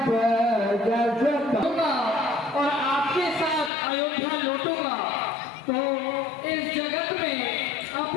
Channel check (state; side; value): drops out; right; at 3.7 s